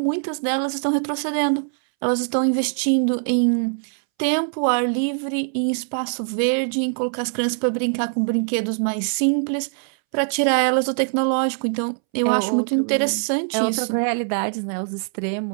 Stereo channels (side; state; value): left; silent; 64 dB below the other